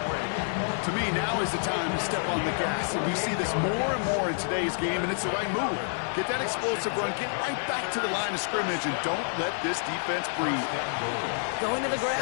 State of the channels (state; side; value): silent; right; 59 dB below the other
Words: me, now is the time to step on the gas. And we see this more and more in today's game, and it's the right move. Get that explosive run, get right back to the line of scrimmage, and don't let this defense breathe. Going to the